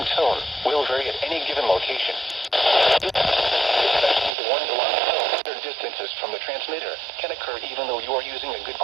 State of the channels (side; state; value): left; drops out; at 4.3 s